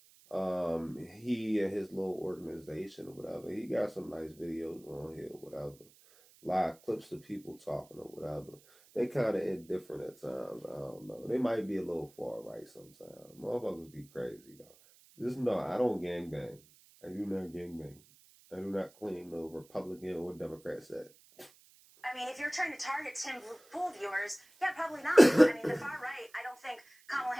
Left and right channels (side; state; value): right; noise; hiss, 26 dB below the sound